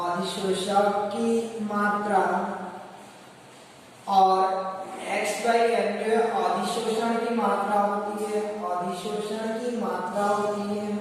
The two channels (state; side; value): identical; both; correlation 1.00